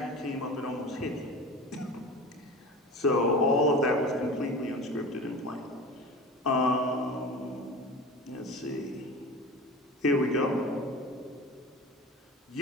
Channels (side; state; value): both; normal; correlation 0.34